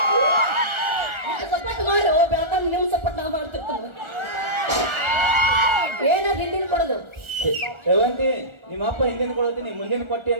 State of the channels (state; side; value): late; left; 1.4 ms